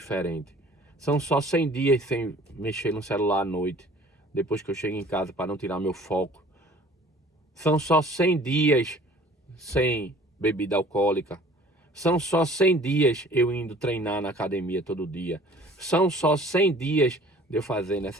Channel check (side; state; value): both; normal; correlation 0.50